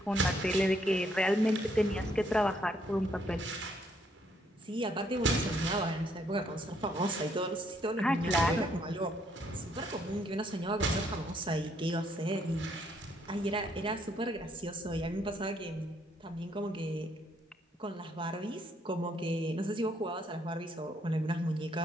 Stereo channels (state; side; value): normal; both; correlation 0.70